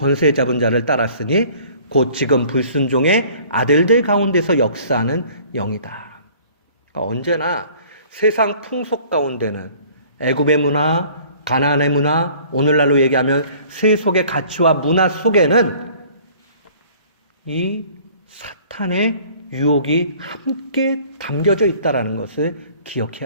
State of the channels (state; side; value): inverted; both; correlation -0.52